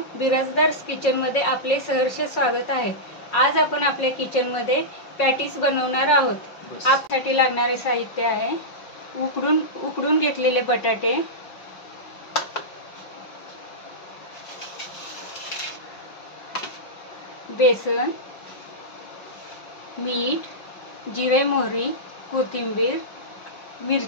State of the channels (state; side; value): late; right; 5.5 ms